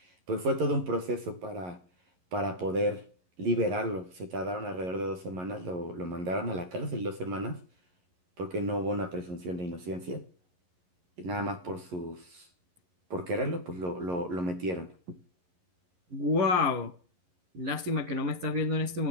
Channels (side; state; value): left; late; 11 ms